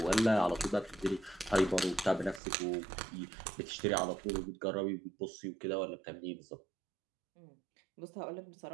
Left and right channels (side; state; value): left; drops out; at 2.4 s